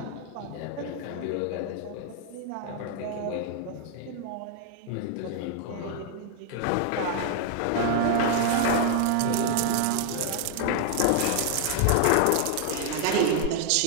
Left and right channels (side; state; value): both; different; correlation 0.00